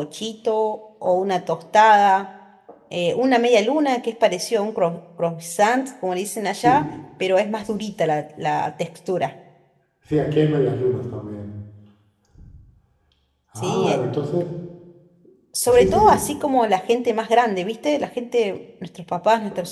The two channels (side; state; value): both; identical; correlation 1.00